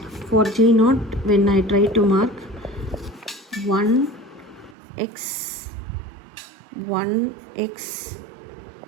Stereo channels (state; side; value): drops out; left; at 4.8 s